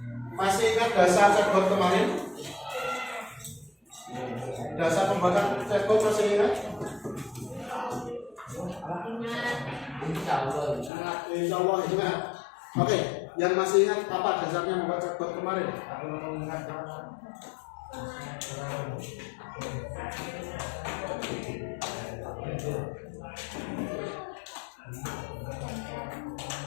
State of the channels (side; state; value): right; drops out; at 10.9 s